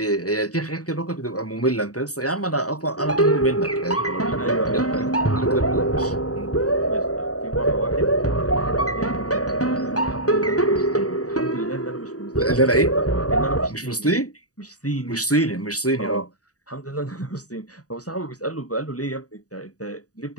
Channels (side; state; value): right; late; 0.67 ms